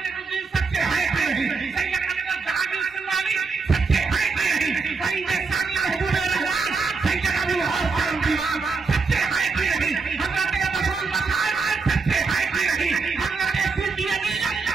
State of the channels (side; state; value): left; quieter; 4.6 dB